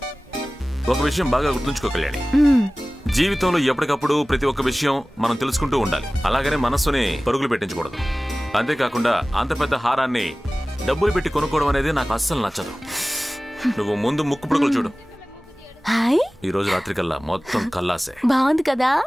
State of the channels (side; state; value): both; normal; correlation 0.98